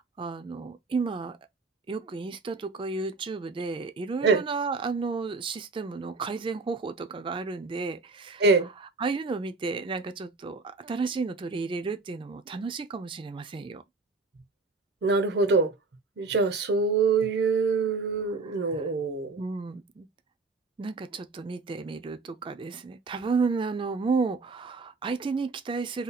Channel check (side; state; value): left; quieter; 4.0 dB